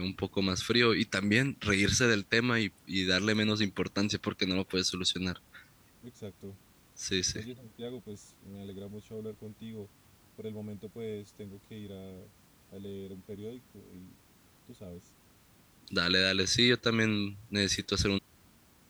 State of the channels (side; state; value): both; identical; correlation 1.00